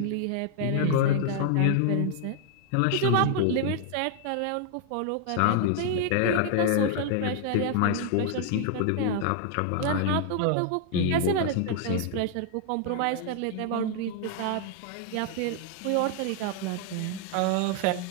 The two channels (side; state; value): both; different; correlation 0.00